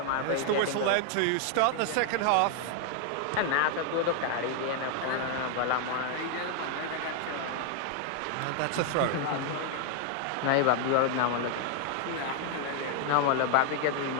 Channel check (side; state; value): both; different; correlation 0.00